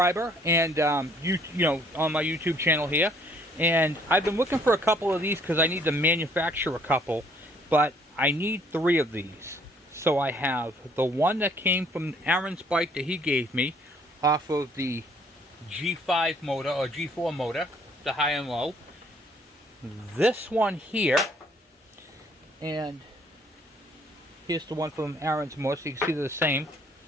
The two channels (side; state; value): both; normal; correlation 0.62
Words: and you know, on my YouTube channel here. And I've been looking for a couple of these because I need to manufacture a couple, but I need 3 of these. So I have the one that came from Aaron's bike that he gave me off of the G5 motor or G4 motor, the high and low. This one here, and here's the one from Aaron's motor, so you can see they're the same.